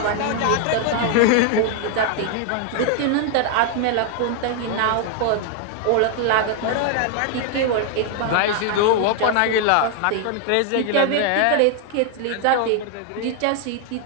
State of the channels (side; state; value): both; different; correlation 0.00